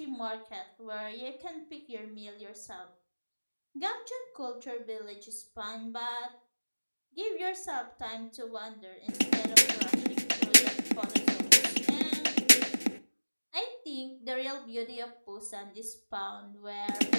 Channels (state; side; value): inverted; both; correlation -1.00